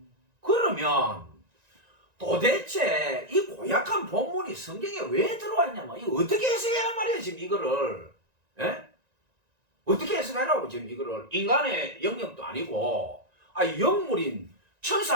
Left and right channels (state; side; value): late; left; 1.9 ms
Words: 그러면 도대체 이 고약한 본문이 성경에 왜 들어와 있냐면 이거 어떻게 해석해야 말이에요 지금 이거를. 예? 어떻게 해석하라고 지금 이거를. 인간의 영역도 아니고 영물인